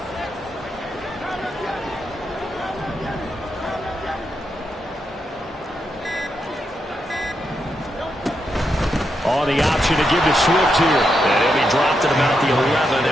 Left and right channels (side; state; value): both; normal; correlation 0.83